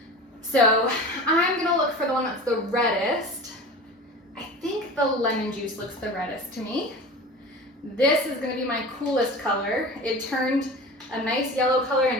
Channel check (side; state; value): both; normal; correlation 0.34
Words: So I'm gonna look for the one that's the reddest. I think the lemon juice looks the reddest to me. This is gonna be my coolest color. It turned a nice yellow color